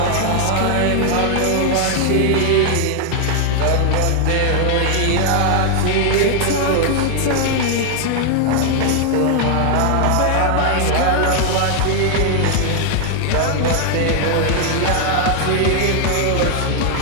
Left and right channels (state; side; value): different; both; correlation 0.00